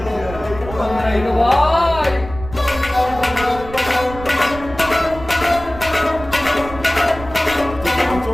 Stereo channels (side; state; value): right; noise; rumble, 13 dB below the sound